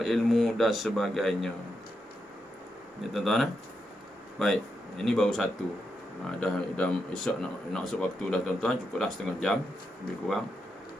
ilmu dan sebagainya. Ya tuan-tuan, baik, ini baru satu. Dah esok nak masuk waktu dah tuan-tuan, cukuplah setengah jam lebih kurang.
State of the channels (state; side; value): normal; both; correlation 0.84